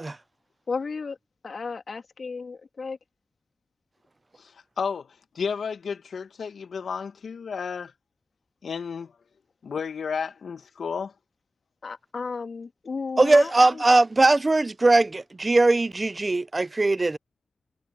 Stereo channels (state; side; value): normal; both; correlation 0.97